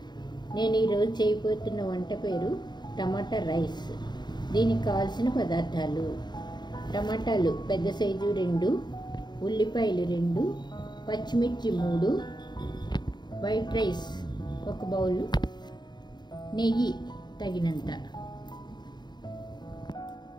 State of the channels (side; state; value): right; late; 0.21 ms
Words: నేను ఈరోజు చేయబోతున్న వంట పేరు టమాటా రైస్. దీనికి కావాల్సిన పదార్థాలు: టమాటాలు పెద్ద సైజు 2, ఉల్లిపాయలు 2, పచ్చిమిర్చి 3, వైట్ రైస్ 1 బౌలు, నెయ్యి తగినంత.